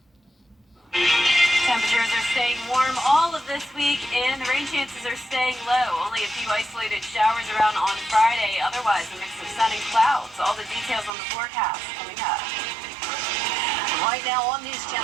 Temperatures are staying warm all of this week, and the rain chances are staying low. Only a few isolated showers around on Friday. Otherwise, a mix of sun and clouds. All the details on the forecast coming up. Right now on News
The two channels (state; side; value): drops out; left; at 11.1 s